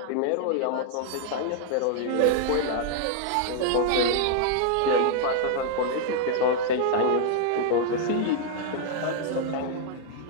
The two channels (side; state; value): both; different; correlation -0.01